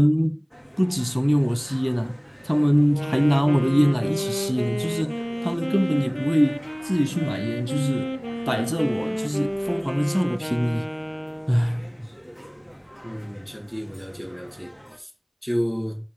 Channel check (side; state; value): both; identical; correlation 1.00